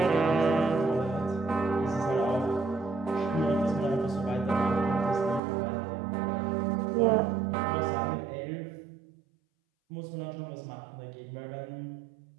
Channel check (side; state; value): left; drops out; at 5.4 s